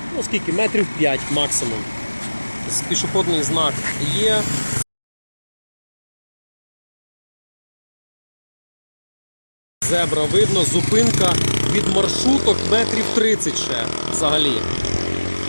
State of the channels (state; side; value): inverted; both; correlation -1.00